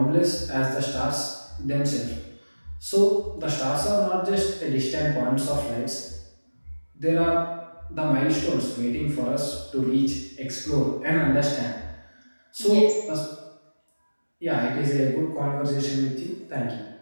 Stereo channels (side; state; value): both; inverted; correlation -1.00